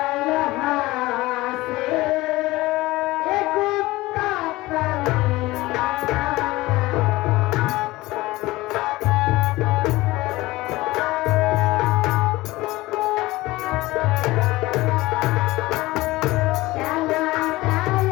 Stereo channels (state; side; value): quieter; right; 19.3 dB